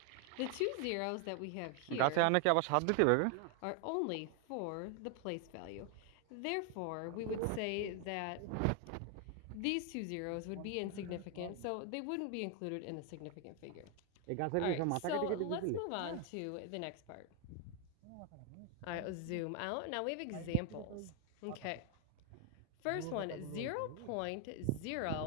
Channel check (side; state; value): both; different; correlation 0.00